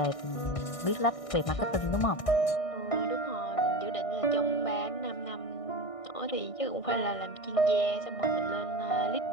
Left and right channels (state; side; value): late; right; 1.6 ms